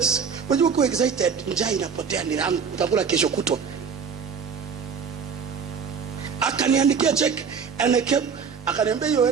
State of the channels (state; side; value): quieter; left; 6.3 dB